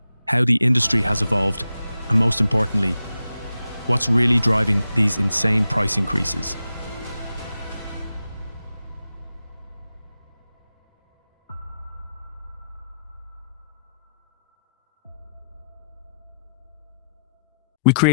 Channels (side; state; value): both; inverted; correlation -0.86